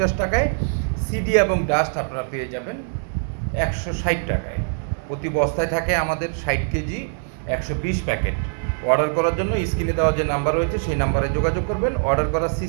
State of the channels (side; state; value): left; silent; 58 dB below the other